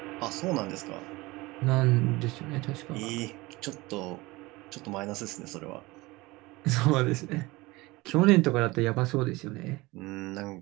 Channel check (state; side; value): quieter; left; 21.6 dB